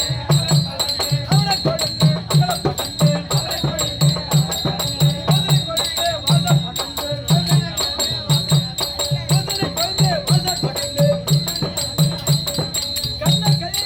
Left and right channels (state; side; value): identical; both; correlation 1.00